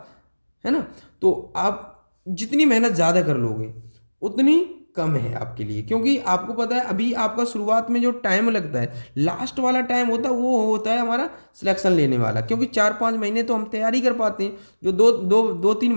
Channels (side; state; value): both; inverted; correlation -1.00